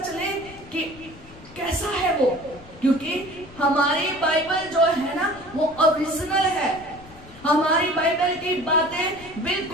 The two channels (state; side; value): noise; left; rumble, 20 dB below the sound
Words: चले कि कैसा है वो, क्योंकि हमारी बाइबल जो है ना वो ओरिजिनल है। हमारी बाइबल की बातें